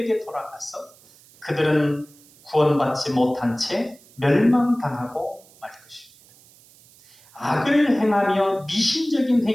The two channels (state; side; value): noise; right; hiss, 27 dB below the sound